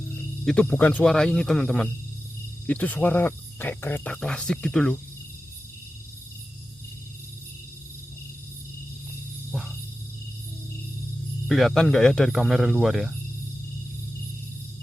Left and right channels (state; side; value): normal; both; correlation 0.93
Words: itu bukan suara ini teman-teman. Itu suara kayak kereta klasik gitu loh. Wah, kelihatan nggak ya dari kamera luar ya?